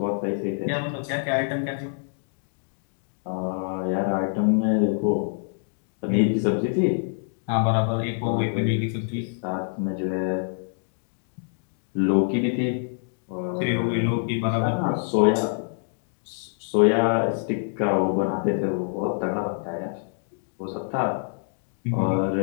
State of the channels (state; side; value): silent; right; digital silence